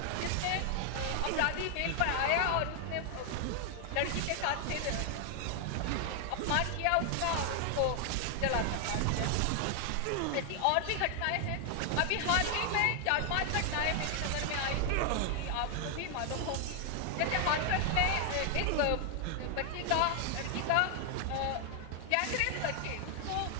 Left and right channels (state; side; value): different; both; correlation 0.00